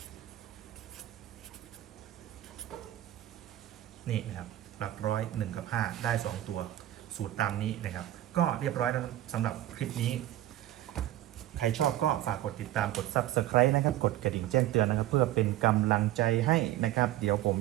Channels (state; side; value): quieter; left; 14.0 dB